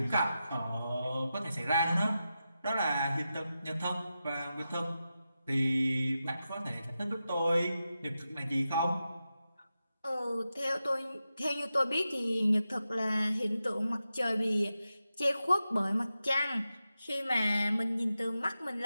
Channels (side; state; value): both; inverted; correlation -0.91